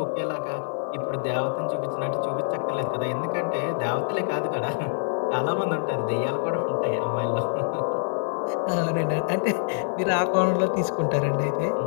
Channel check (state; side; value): silent; right; digital silence